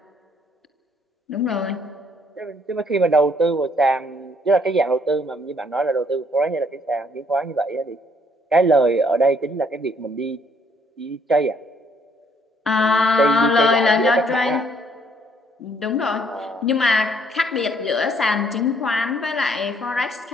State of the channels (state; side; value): normal; both; correlation 0.66